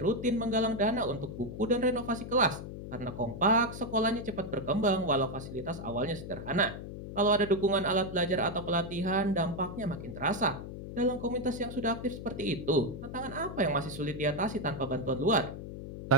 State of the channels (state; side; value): noise; left; hum, 9 dB below the sound